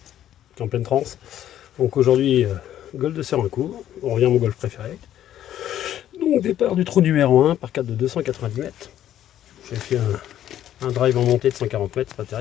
qui est en pleine transe. Donc aujourd'hui, golf de Serencourt, on revient à mon golf préféré. Donc départ du trou numéro 1 par 4 de 290 mètres. J'ai fait un drive en montée de 140 mètres, c'est pas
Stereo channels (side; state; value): right; quieter; 11.5 dB